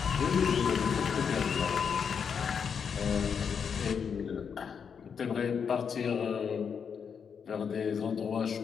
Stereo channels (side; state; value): right; quieter; 6.7 dB